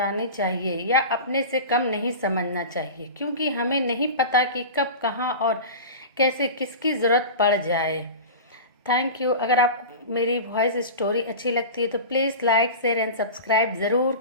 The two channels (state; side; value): inverted; both; correlation -0.31